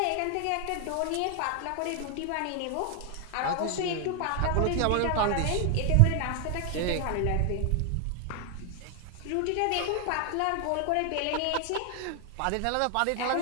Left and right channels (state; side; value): different; both; correlation 0.00